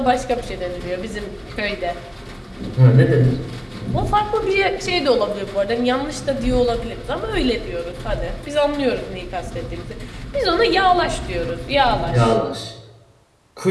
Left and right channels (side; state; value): both; identical; correlation 1.00